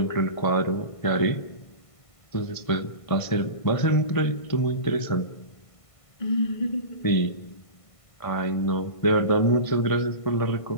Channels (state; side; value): late; right; 1.5 ms